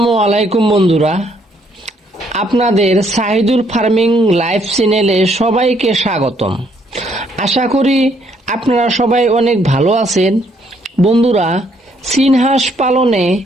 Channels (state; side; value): normal; both; correlation 0.69